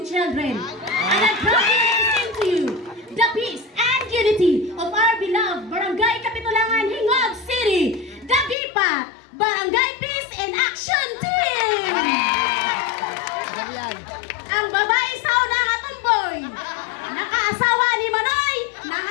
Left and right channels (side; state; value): right; drops out; at 8.6 s